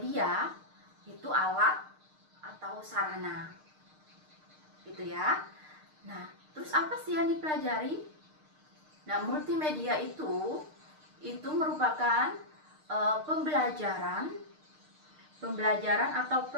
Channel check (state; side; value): late; left; 6.5 ms